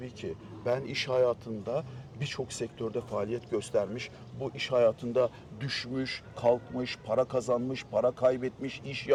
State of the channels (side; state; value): both; identical; correlation 1.00